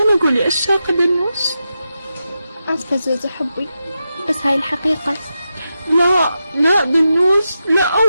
قولي أشياء دنوش. آسفة زوزو حبي، بس هاي الحقيقة. لا لا دنوش، لا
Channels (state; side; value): inverted; both; correlation -0.89